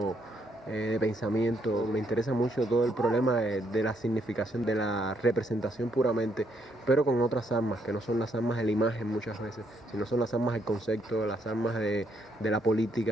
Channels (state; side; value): normal; both; correlation 0.74